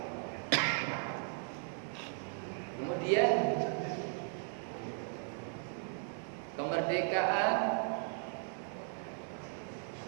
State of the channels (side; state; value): left; silent; 53 dB below the other